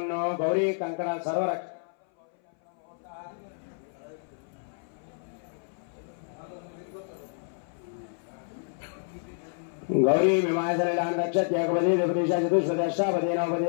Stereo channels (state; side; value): silent; right; 58 dB below the other